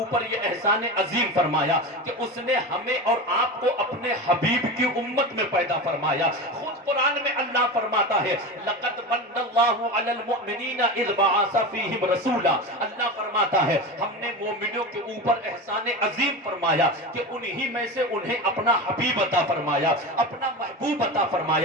یہ احسان عظیم فرمایا کہ اس نے ہمیں اور آپ کو اپنے حبیب کی امت میں پیدا فرمایا۔ خود قرآن میں اللہ فرماتا ہے لَقَدْ مَنَّ اللَّهُ عَلَى الْمُؤْمِنِينَ إِذْ بَعَثَ فِيهِمْ رَسُولًا۔ اللہ فرماتا ہے ہم نے مومنوں کے اوپر احسان عظیم فرمایا کہ انہی میں سے انہیں اپنا حبیب عطا فرمایا، اپنا محبوب عطا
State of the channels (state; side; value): normal; both; correlation 0.25